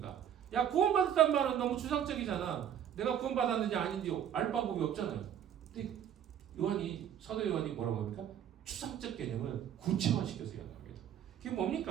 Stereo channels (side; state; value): left; quieter; 9.6 dB